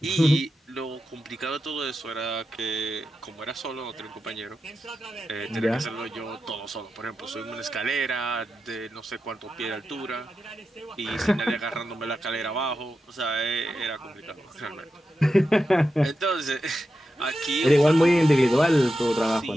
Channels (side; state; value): both; normal; correlation 0.90